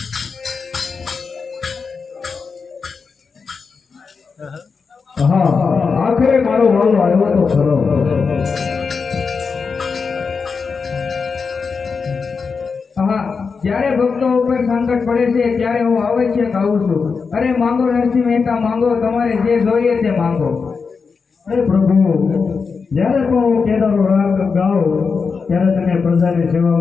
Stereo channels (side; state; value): right; quieter; 5.2 dB